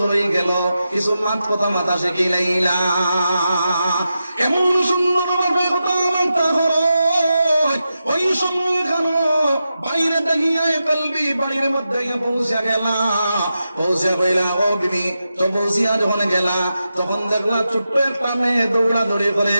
হয়ে গেল কিছু মাত কথা মাথা শিখিলাইলা এমন সুন্দর ভাবে কথা বার্তা করো ওই সময় কেন বাইরে দাহিয়া কলবি বাড়ির মধ্যে পৌঁছা গেলা পৌঁছা গেলা ও বিবি তো পৌঁছিয়া যখন গেলা তখন দেখলা ছোট্ট একটা মেয়ে দৌড়া দৌড়ি করে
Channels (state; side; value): inverted; both; correlation -0.89